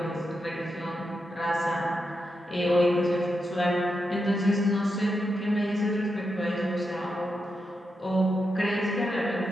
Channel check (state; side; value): normal; both; correlation 0.86